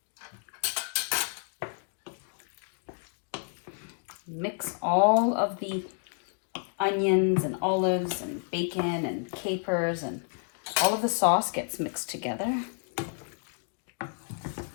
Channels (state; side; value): silent; right; 58 dB below the other